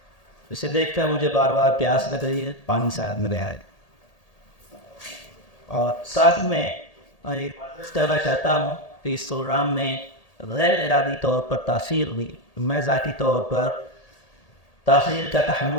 اسے دیکھ کر مجھے بار بار پیاس لگ رہی ہے. پانی ساتھ میں رہا ہے اور ساتھ میں کہنا چاہتا ہوں کہ اس پروگرام میں غیر ارادی طور پر تاثیر ہوئی. میں ذاتی طور پر تاخیر کا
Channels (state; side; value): late; right; 1.8 ms